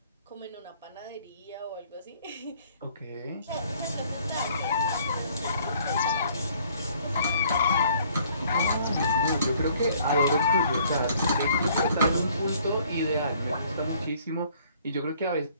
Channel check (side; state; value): both; inverted; correlation -0.60